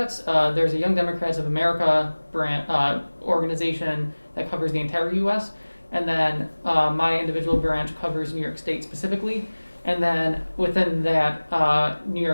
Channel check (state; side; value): inverted; both; correlation -1.00